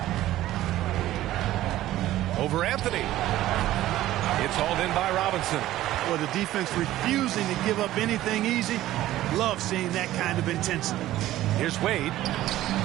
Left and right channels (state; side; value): quieter; left; 14.6 dB